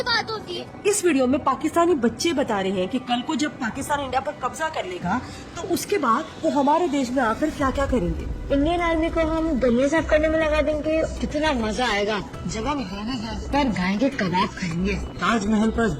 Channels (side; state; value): both; identical; correlation 1.00